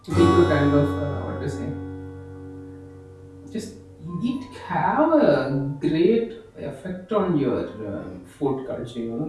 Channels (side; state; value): both; identical; correlation 1.00